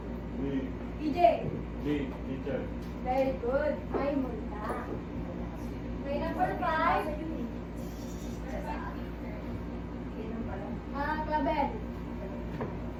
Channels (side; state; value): both; identical; correlation 1.00